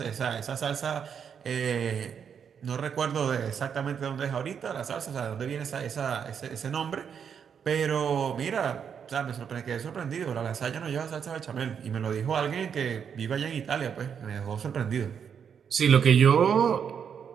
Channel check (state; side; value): quieter; left; 7.4 dB